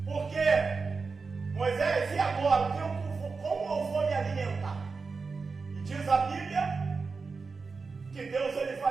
Porque Moisés, e agora? Como eu vou me alimentar? E diz a Bíblia que Deus ele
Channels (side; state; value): left; quieter; 4.6 dB